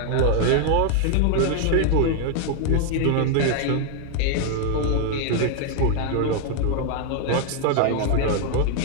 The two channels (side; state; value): both; different; correlation 0.00